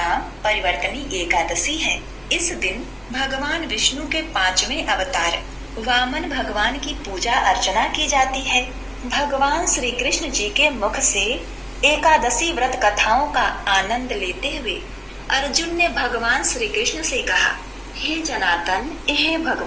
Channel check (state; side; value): identical; both; correlation 1.00